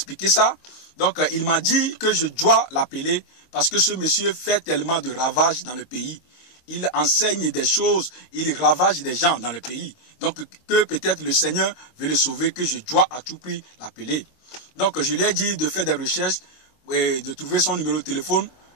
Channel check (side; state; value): right; late; 24 ms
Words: ça. Donc, il m'a dit que je dois l'appeler parce que ce monsieur fait tellement de ravages dans le pays. Il enseigne des choses, il ravage des gens dans le pays. Donc, que peut-être le Seigneur veut le sauver, que je dois à tout prix l'appeler. Donc, je lui ai dit de faire des recherches, et de trouver son numéro de téléphone